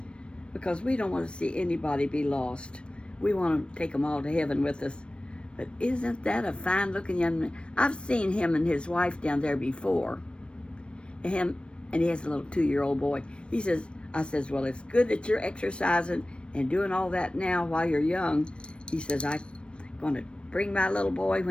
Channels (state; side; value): late; right; 0.058 ms